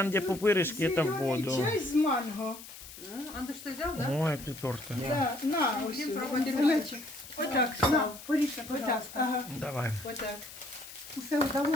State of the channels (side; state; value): left; noise; hiss, 15 dB below the sound